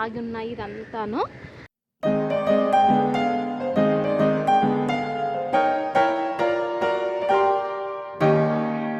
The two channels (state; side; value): identical; both; correlation 1.00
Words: ఆగి ఉన్నాయి. ఇదంతాను